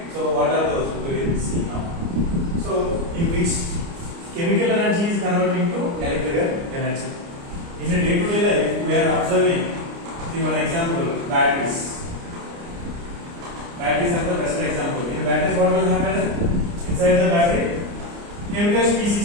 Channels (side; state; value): left; late; 29 ms